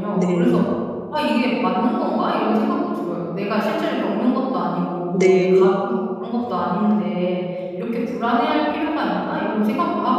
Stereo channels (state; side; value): identical; both; correlation 1.00